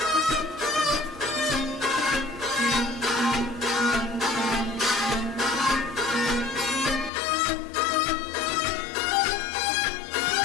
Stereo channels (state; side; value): drops out; right; at 7.1 s